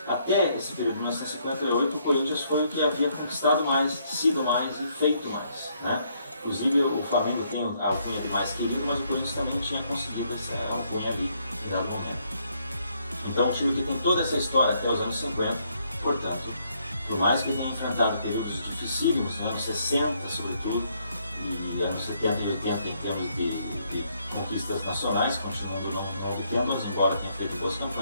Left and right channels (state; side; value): inverted; both; correlation -0.71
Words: Até esse período de 1958, o Corinthians foi o que havia conquistado mais, sido mais e feito mais, né? Inclusive o Flamengo tem a alcunha de mais querido, mas o Corinthians também tinha conseguido essa alcunha ali em dado momento. Então um time que tem toda essa história até os anos 50, portanto, por mais que tenha enfrentado períodos dificílimos, nos anos 60 sobretudo, e anos 70 e 80 em termos de conquistas nacionais, continuando não obtendo-as, embora tenha feito boas